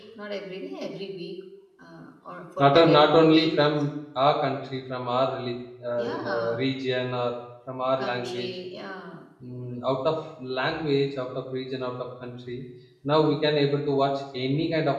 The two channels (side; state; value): both; identical; correlation 1.00